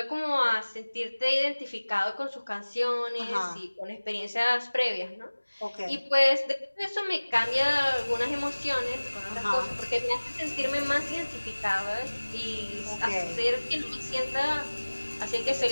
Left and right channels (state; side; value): inverted; both; correlation -1.00